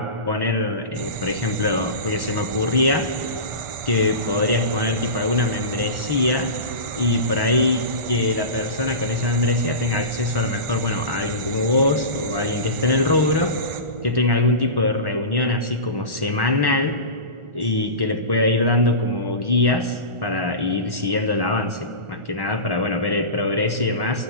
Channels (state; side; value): late; left; 1.4 ms